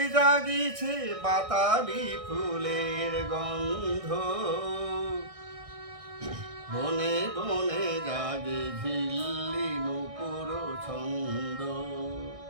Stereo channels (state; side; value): late; left; 1.6 ms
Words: জাগিছে বাতাবি ফুলের গন্ধ, বনে বনে জাগে ঝিল্লি নুপুর ছন্দ।